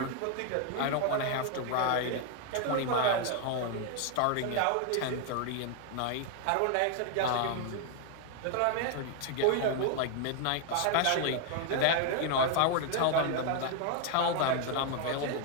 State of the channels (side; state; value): both; different; correlation 0.00